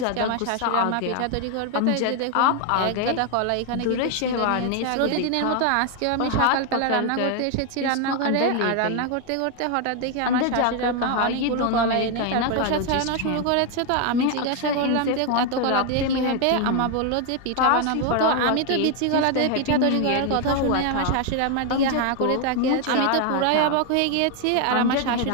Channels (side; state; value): both; different; correlation 0.01